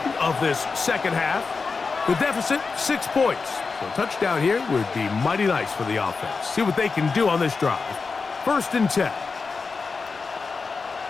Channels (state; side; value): quieter; right; 4.6 dB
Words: of this second half. The deficit, 6 points. So a touchdown here would be mighty nice for the offense. See what they can do on this drive. 1st and 10.